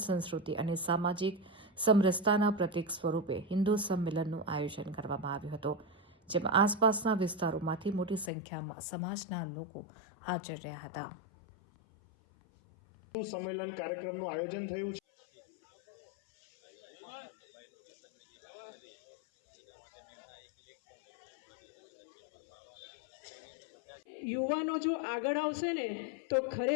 સંસ્કૃતિ અને સામાજિક સમરસતાના પ્રતીક સ્વરૂપે હિન્દુ સંમેલનનું આયોજન કરવામાં આવ્યું હતું, જેમાં આસપાસના વિસ્તારોમાંથી મોટી સંખ્યામાં સમાજના લોકો હાજર રહ્યા હતા। સંમેલન કાર્યક્રમનું આયોજન થયું છે। યુવાનો જો આગળ આવશે ને તો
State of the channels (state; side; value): drops out; right; at 8.3 s